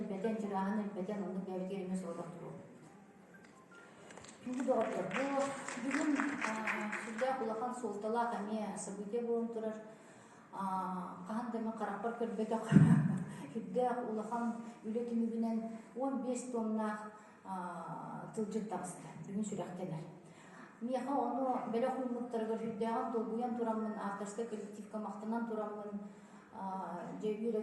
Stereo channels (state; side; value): identical; both; correlation 1.00